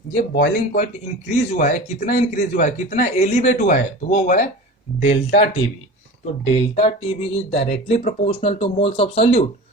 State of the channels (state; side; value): normal; both; correlation 0.34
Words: ये बॉइलिंग पॉइंट इंक्रीज हुआ है। कितना इंक्रीज हुआ है? कितना एलिवेट हुआ है? तो वो हुआ है डेल्टा टीबी। तो delta TB is directly proportional to moles of solute.